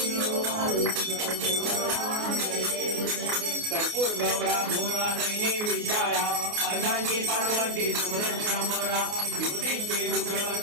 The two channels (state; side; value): late; left; 28 ms